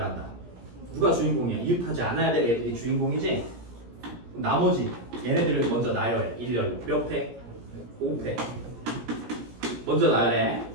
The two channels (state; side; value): late; left; 17 ms